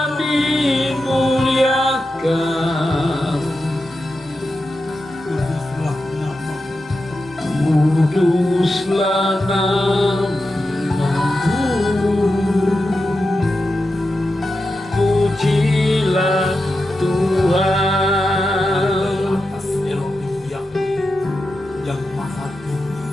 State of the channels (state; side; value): normal; both; correlation 0.90